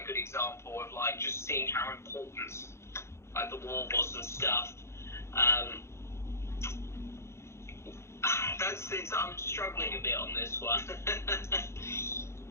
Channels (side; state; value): right; late; 0.13 ms